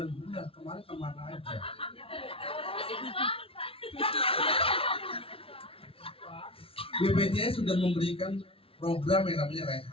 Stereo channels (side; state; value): right; late; 0.26 ms